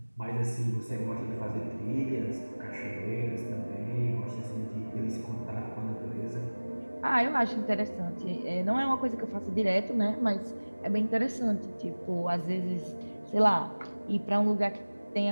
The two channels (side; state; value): both; inverted; correlation -1.00